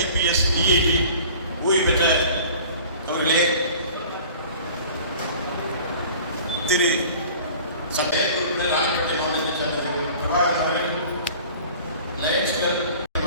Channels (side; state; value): both; inverted; correlation -0.45